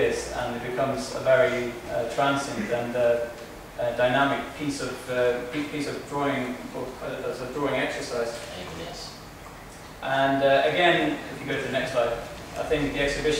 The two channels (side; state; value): both; identical; correlation 1.00